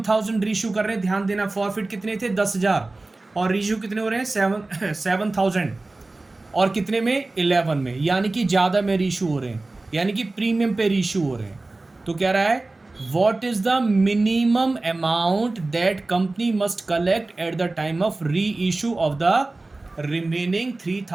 रीशू कर रहे हैं, ध्यान देना। फॉरफिट कितने थे? 10,000। और रीशू कितने हो रहे हैं? 7,000। और कितने में? 11 में, यानी कि ज़्यादा में रीशू हो रहे हैं, यानी कि प्रीमियम पे रीशू हो रहे हैं। तो कह रहा है what is the minimum amount that company must collect at the time of री issue of the remaining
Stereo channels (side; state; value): left; quieter; 3.1 dB